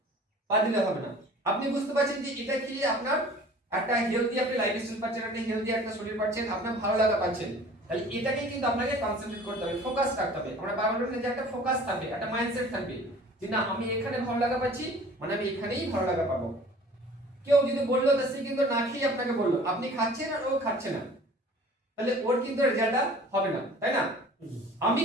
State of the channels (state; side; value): normal; both; correlation 0.47